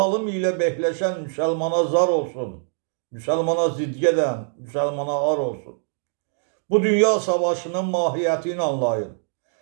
ilə behləşən müsəlmana zar olsun. Müsəlmana zid gedən müsəlmana ar olsun. Bu dünya savaşının mahiyyətini anlayın.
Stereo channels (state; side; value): silent; left; digital silence